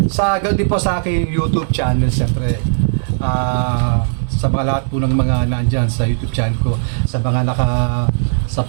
din po sa aking YouTube channel, siyempre. Sa mga lahat po ng mga nandyan sa YouTube channel ko, sa mga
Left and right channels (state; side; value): silent; left; 64 dB below the other